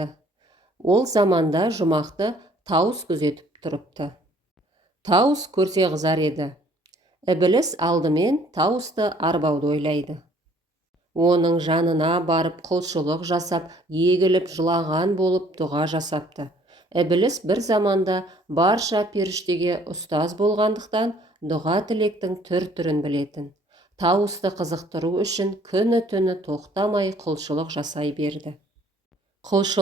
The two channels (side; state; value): both; normal; correlation 0.59